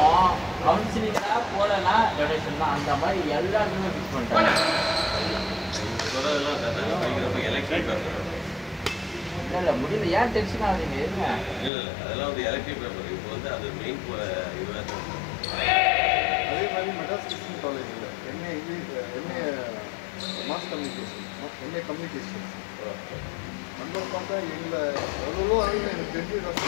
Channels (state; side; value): drops out; right; at 11.7 s